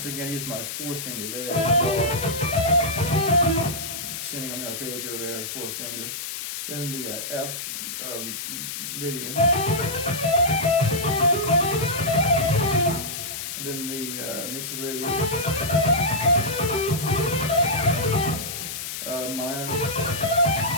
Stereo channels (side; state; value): left; noise; hiss, 6 dB below the sound